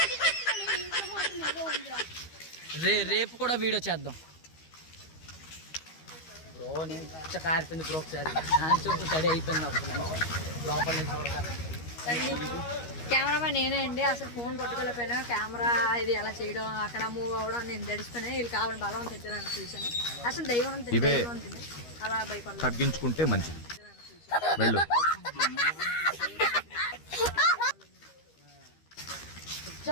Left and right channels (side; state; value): right; late; 13 ms